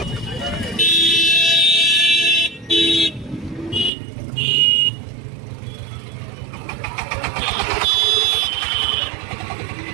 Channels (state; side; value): drops out; left; at 3.9 s